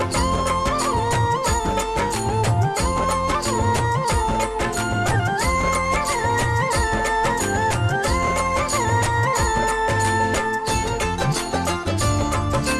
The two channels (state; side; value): identical; both; correlation 1.00